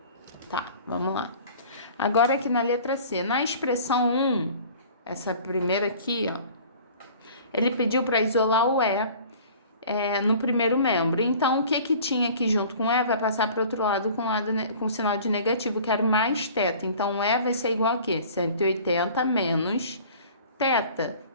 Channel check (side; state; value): both; inverted; correlation -0.46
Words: Tá, vamos lá. Agora aqui na letra C, na expressão 1, essa primeira aqui, ó, ele pediu para isolar o E no primeiro membro. Então, o que tinha aqui junto com o E vai passar para o outro lado com sinal de negativo, que era mais θ. Então, o E vai ser igual a quê? 180 menos θ.